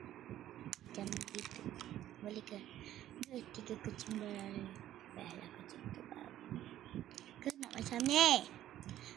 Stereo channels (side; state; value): left; quieter; 12.7 dB